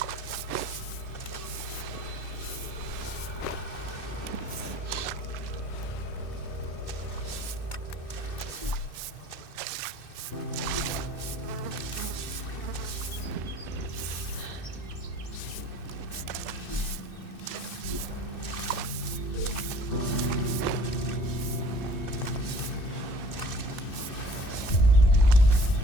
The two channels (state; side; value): late; right; 2.6 ms